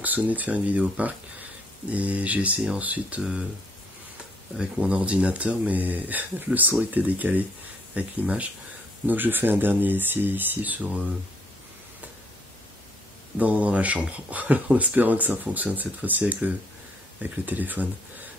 de faire une vidéo au parc. Et j'ai essayé ensuite avec mon ordinateur, mais le son était décalé avec l'image. Donc je fais un dernier essai ici dans la chambre, en espérant que ça fonctionne cette fois-ci avec le téléphone.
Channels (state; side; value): normal; both; correlation 0.68